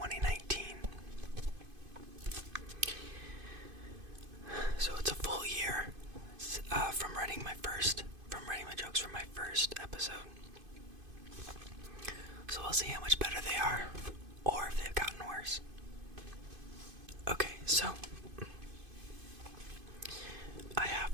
So it's a full year from writing my jokes from my first episode. So we'll see how much better they are, or if they've gotten worse. Okay, so I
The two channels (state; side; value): late; left; 2.5 ms